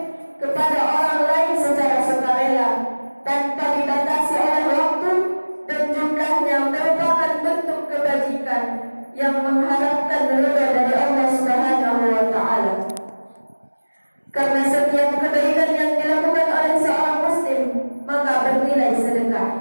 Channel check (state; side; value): inverted; both; correlation -1.00